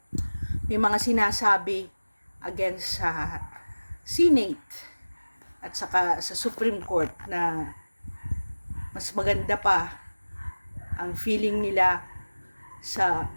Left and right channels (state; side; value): inverted; both; correlation -1.00